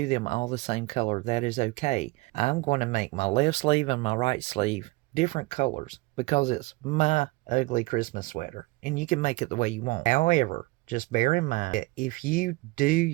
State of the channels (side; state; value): left; quieter; 22.8 dB